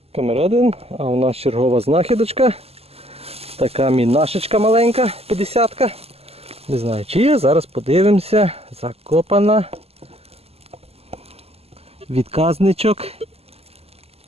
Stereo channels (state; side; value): late; left; 0.29 ms